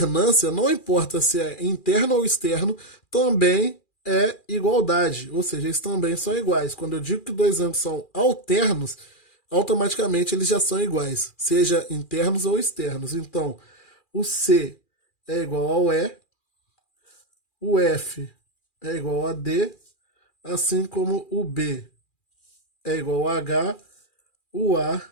não importa se é interno ou externo, também é igualdade, ou seja, eles também são iguais. Quando eu digo que dois ângulos são alternos, automaticamente eles já são iguais, seja internos ou externos. Então, o C é igual ao E, o F é igual a D, assim como o B é igual a H, o A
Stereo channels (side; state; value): right; late; 2.4 ms